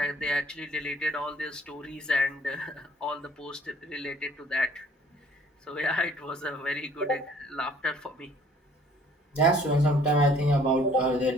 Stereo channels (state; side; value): normal; both; correlation 0.56